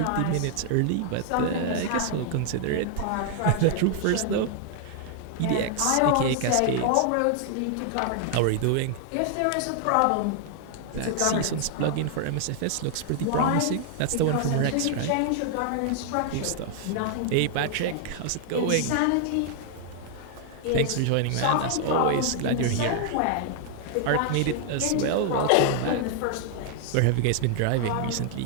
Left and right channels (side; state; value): both; different; correlation 0.00